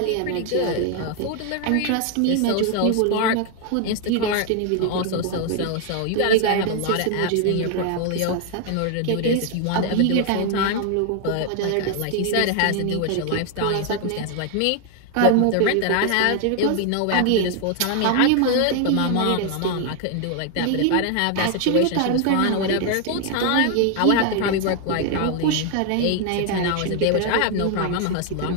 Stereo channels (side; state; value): both; different; correlation 0.00